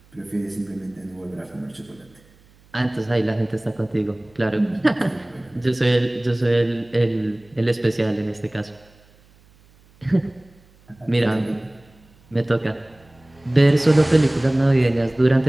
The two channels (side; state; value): right; noise; hum, 30 dB below the sound